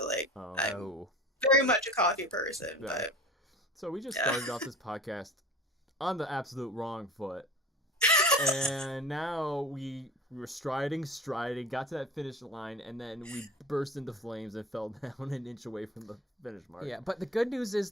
like, Oh. I'm Oh. very much a coffee person, Yeah. but So we just Yeah. started off this podcast on the absolute wrong foot. And now we were striding, got to that finish line, and then we burst into flames and fell down an inch away from the finish mark. Yeah, but the good news is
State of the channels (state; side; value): normal; both; correlation 0.38